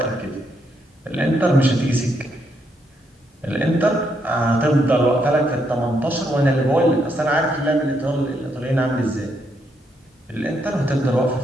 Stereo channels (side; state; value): both; normal; correlation 0.77